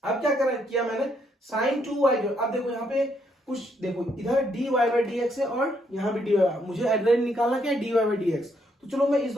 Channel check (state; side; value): normal; both; correlation 0.73